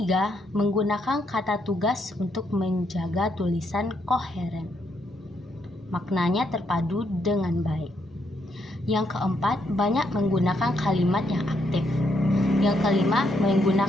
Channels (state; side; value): normal; both; correlation 0.76